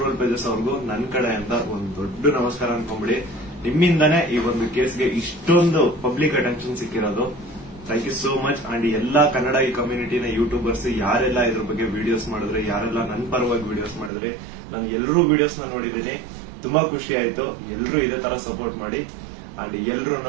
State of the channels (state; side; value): drops out; left; at 14.1 s